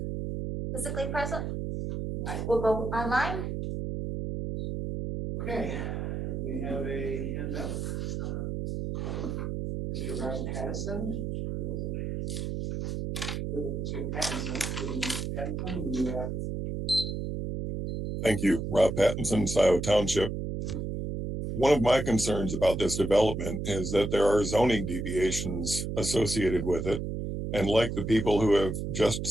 physically present? All right, we'll go online. Okay, we have a hand up. Mr. Ross Patterson. Thank you. Rob Pattinson, Scio Township. One of my concerns about this development is that there are zoning deviations associated with it. And like the people who have just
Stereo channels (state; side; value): noise; right; hum, 3 dB below the sound